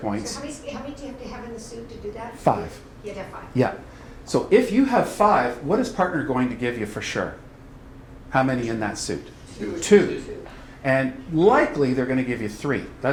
So how many do you have to have in the suit to do that? 5. You'd have 5. Yeah. So if you have 5, what is partner going to give you for sure? How many in that suit? 2. And likely they're going to give you 3.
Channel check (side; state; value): both; identical; correlation 1.00